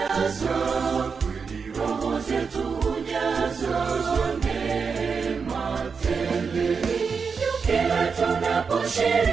roho zetu hujazwa neema tele. Kila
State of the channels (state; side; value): quieter; left; 5.5 dB